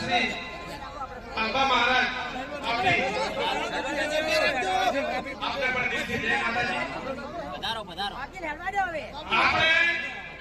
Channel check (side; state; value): both; identical; correlation 1.00